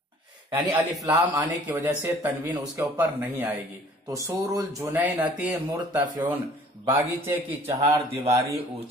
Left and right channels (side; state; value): both; normal; correlation 0.53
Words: यानी अलिफ लाम आने की वजह से तनवीन उसके ऊपर नहीं आएगी। तो सूरुल जुनैनती मुर्तफिउन, बागीचे की चार दीवारी